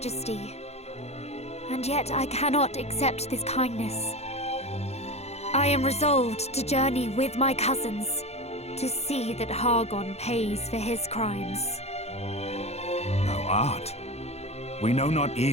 And yet I cannot accept this kindness. I am resolved to journey with my cousins, to see that Hargon pays for his crimes. Thou art? We know not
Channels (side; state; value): right; late; 0.31 ms